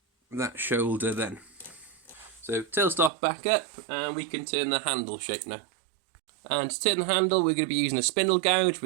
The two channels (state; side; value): drops out; left; at 3.1 s